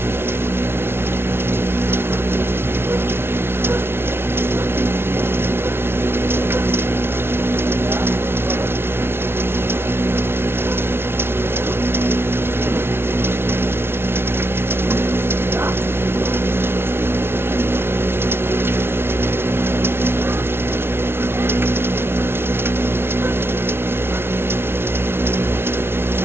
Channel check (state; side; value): late; left; 0.12 ms